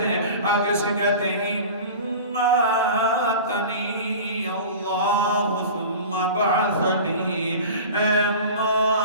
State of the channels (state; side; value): inverted; both; correlation -0.36